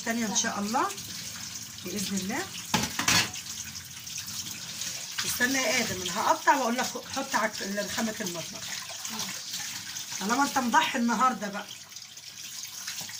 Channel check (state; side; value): identical; both; correlation 1.00